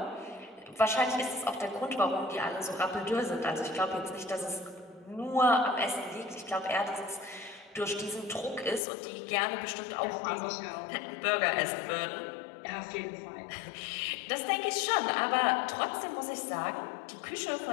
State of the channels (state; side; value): drops out; right; at 8.8 s